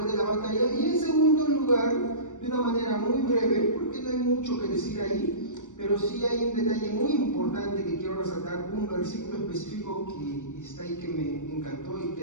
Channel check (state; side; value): late; right; 0.86 ms